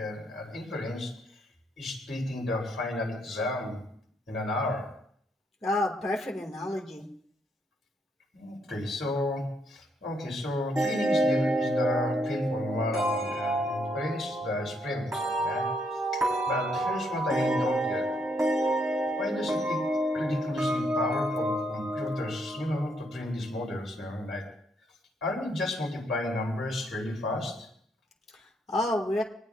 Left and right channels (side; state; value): both; normal; correlation 0.74